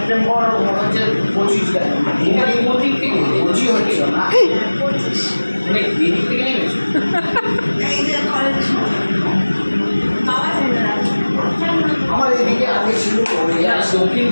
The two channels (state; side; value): inverted; both; correlation -1.00